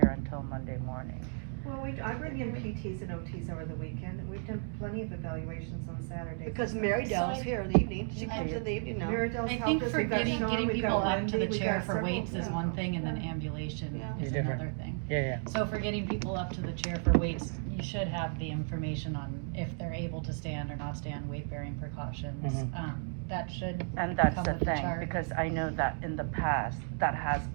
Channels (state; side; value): silent; left; 55 dB below the other